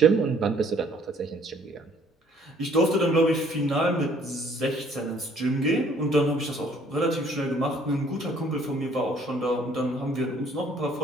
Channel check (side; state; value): both; normal; correlation 0.60